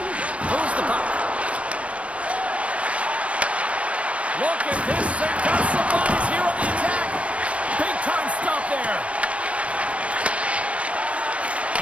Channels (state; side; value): late; left; 0.063 ms